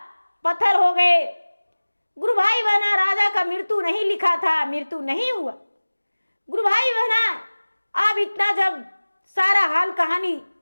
पत्थर हो गए। गुरु भाई बहना राजा का मृत्यु नहीं लिखा था, मृत्यु नहीं हुआ। गुरु भाई बहना अब इतना जब सारा हाल कहानी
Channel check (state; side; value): inverted; both; correlation -1.00